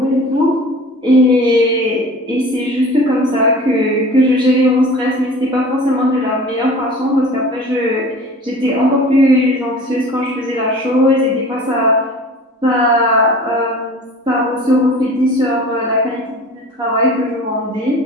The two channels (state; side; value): normal; both; correlation 0.42